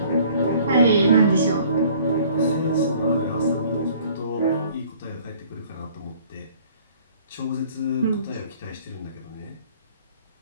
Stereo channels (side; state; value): both; inverted; correlation -0.54